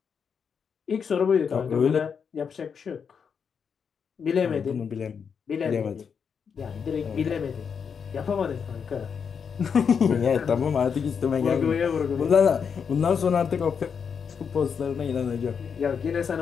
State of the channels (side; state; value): right; quieter; 6.6 dB